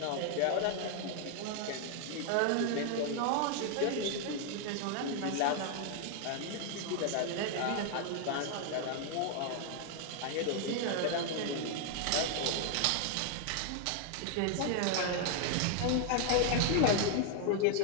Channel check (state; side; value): different; both; correlation 0.00